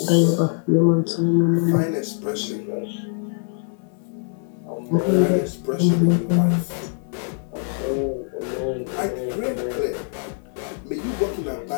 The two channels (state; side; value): silent; right; 63 dB below the other